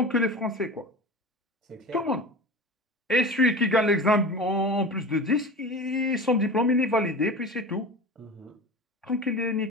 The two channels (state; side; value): normal; both; correlation 0.32